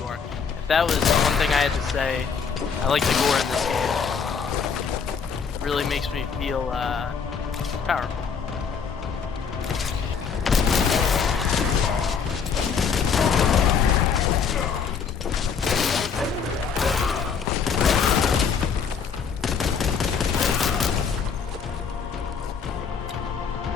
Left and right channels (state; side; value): quieter; right; 6.2 dB